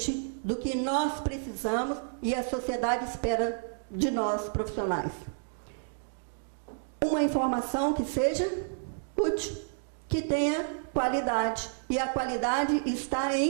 do que nós precisamos e a sociedade espera de nós, profissionais. Uma informação que seja útil, que tenha qualidade. E a qualidade está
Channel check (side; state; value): left; silent; digital silence